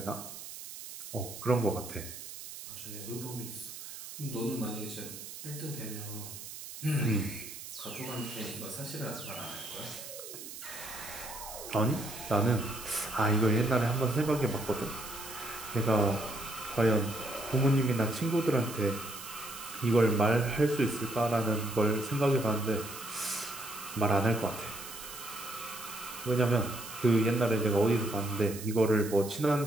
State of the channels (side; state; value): right; noise; hiss, 12 dB below the sound